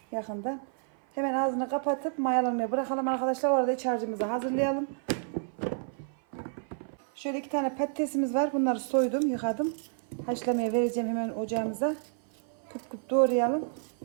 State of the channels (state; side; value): silent; left; 56 dB below the other